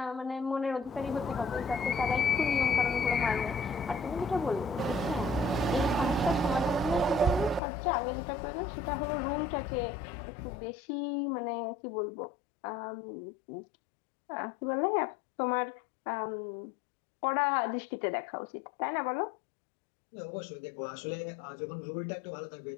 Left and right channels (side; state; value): right; drops out; at 7.6 s